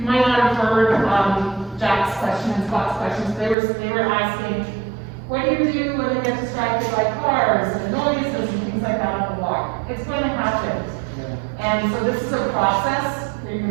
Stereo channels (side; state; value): left; drops out; at 3.6 s